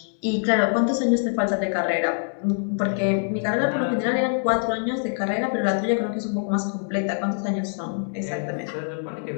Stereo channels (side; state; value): right; silent; digital silence